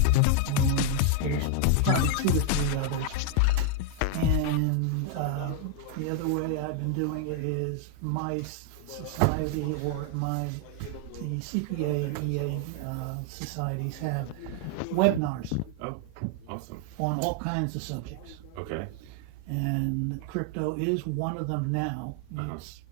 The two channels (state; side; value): different; both; correlation 0.00